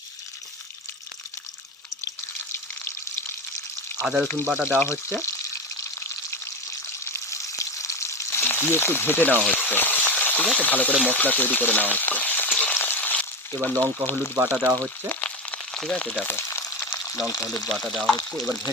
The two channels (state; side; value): normal; both; correlation 0.19